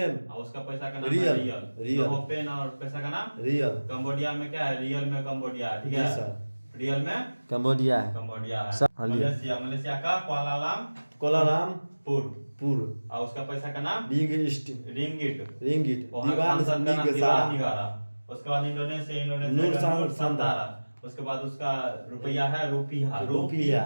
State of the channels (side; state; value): both; inverted; correlation -1.00